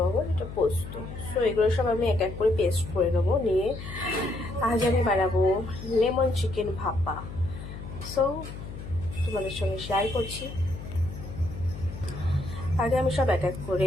এটা পোস্ত। সো এগুলো সব আমি এক এক করে পেস্ট করে নেবো। নিয়ে আজ আমি বানাবো লেমন চিকেন ভাপা। সো তোমাদের সঙ্গে শেয়ার করছি। আগে আমি সব এক এক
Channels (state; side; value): noise; left; hum, 10 dB below the sound